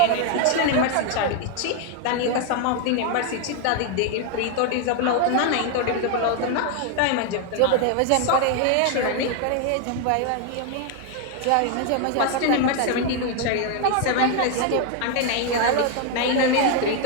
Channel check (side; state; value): both; different; correlation 0.01